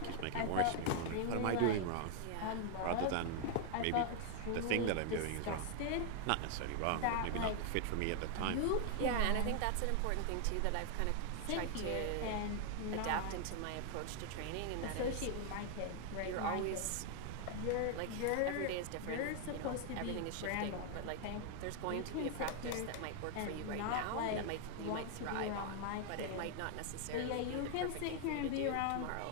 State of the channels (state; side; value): different; both; correlation 0.00